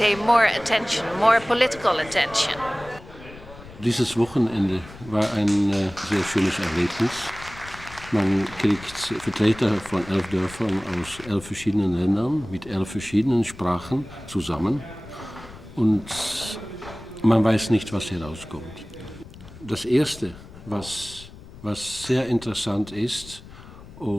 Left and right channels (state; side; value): noise; left; rumble, 18 dB below the sound